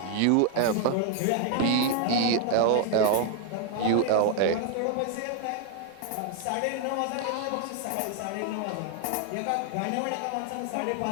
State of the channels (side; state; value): both; different; correlation 0.00